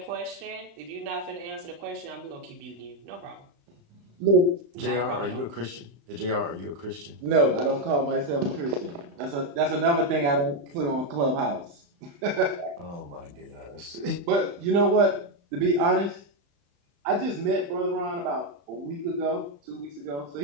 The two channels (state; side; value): late; left; 35 ms